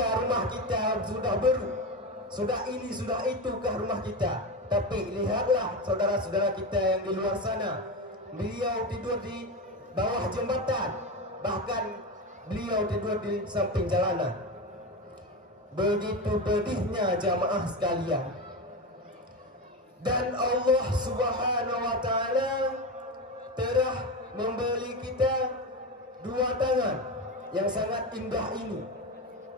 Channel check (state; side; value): normal; both; correlation 0.19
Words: rumah kita sudah baru, sudah ini, sudah itukah rumah kita. Tapi lihatlah saudara-saudara kita yang di luar sana, beliau tidur di bawah jembatan, bahkan beliau tidur di samping jalanan. Begitu pedihnya jamaah sekalian. Dan Allah Subhanahu wa ta'ala telah memberi kita dua tangan yang sangat indah ini.